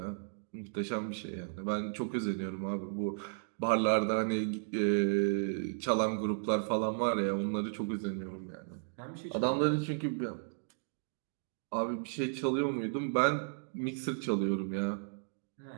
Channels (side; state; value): left; silent; digital silence